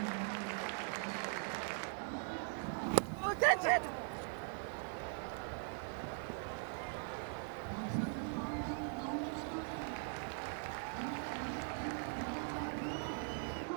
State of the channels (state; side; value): silent; left; 50 dB below the other